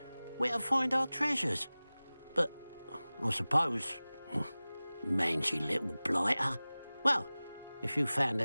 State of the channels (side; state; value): both; inverted; correlation -0.98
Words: where to find our treasures. But I suppose, mangy little blighter. Well, if you found the